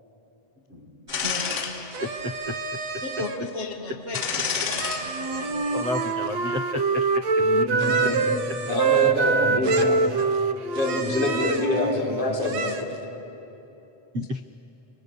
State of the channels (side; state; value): left; late; 7.9 ms